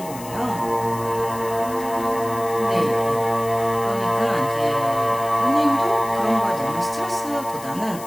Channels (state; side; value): noise; left; hiss, 15 dB below the sound